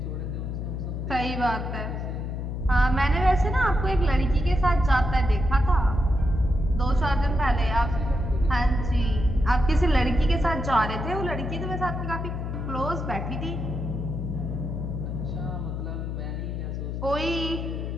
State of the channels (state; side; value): noise; left; hum, 4 dB below the sound